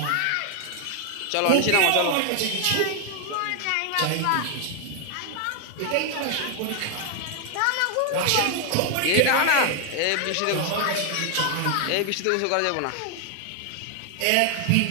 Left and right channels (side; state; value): both; different; correlation 0.00